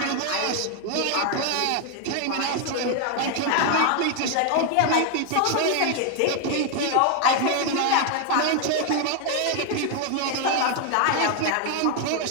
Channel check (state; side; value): different; both; correlation 0.01